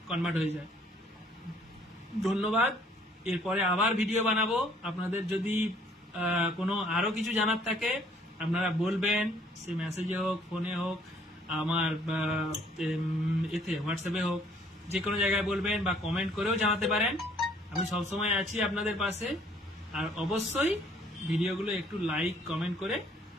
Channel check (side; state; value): both; normal; correlation 0.60